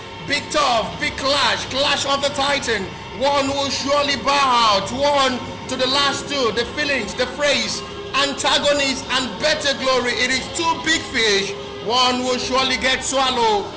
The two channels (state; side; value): identical; both; correlation 1.00